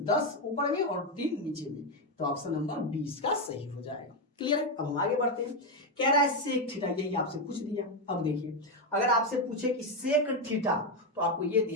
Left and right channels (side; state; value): both; normal; correlation 0.07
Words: ऊपर में और 3 नीचे में, तो ऑप्शन नंबर 20 का सही हो जाएगा। क्लियर है। अब हम आगे बढ़ते हैं, कह रहा है सेक थीटा, यही आपसे पूछ दिया। अब देखिए अगर आपसे पूछे कि सेक थीटा, तो आपको ये